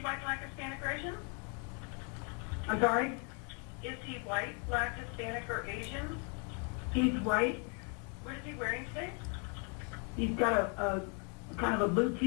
white, black, Hispanic, or Asian? I'm sorry? Is he white, black, Hispanic, or Asian? He's white. What is he wearing today? He's got a kind of a blue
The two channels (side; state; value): right; quieter; 37.4 dB